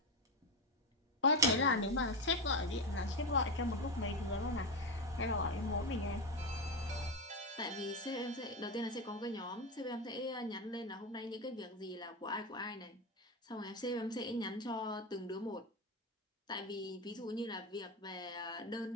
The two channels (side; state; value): both; normal; correlation 0.14